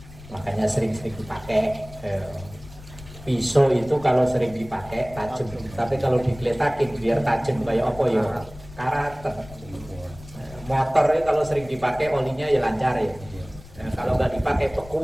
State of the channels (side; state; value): left; noise; rumble, 18 dB below the sound